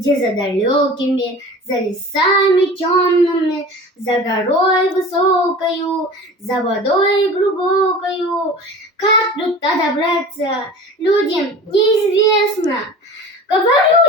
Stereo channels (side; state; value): both; normal; correlation 0.39